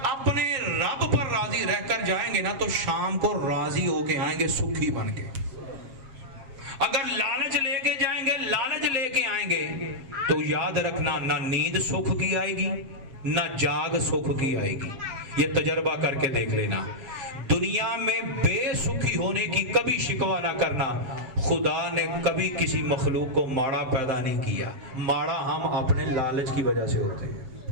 اپنے رب پر راضی رہ کر جائیں گے نا تو شام کو راضی ہو کے آئیں گے، سکھی بن کے۔ اگر لالچ لے کے جائیں گے، لالچ لے کے آئیں گے تو یاد رکھنا نہ نیند سکھ کی آئے گی نہ جاگ سکھ کی آئے گی۔ یہ تجربہ کر کے دیکھ لینا۔ دنیا میں بے سکھی ہونے کی کبھی شکوہ نہ کرنا۔ خدا نے کبھی کسی مخلوق کو ماڑا پیدا نہیں کیا، ماڑا ہم اپنے لالچ کی وجہ سے ہوتے ہیں،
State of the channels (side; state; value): left; late; 7.3 ms